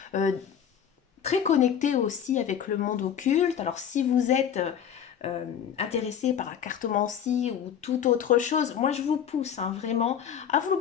euh, très connecté aussi avec le monde occulte. Alors si vous êtes intéressé par la cartomancie ou toute autre chose, moi je vous pousse, hein, vraiment à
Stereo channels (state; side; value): quieter; right; 8.6 dB